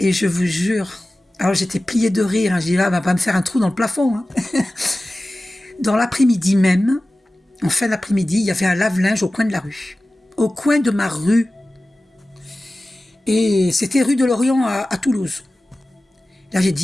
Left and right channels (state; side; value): normal; both; correlation 0.96